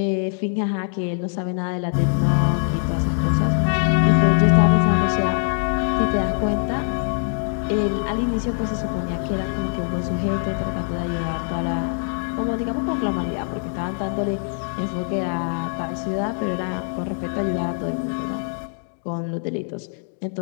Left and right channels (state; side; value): silent; right; 64 dB below the other